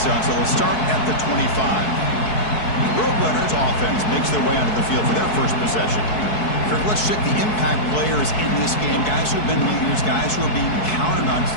so they'll start at the 25. The Roadrunners offense makes their way onto the field for their first possession. Kirk, let's check the impact players in this game. Guys who have been leaders, guys who are being counted on to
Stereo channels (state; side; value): late; right; 4.6 ms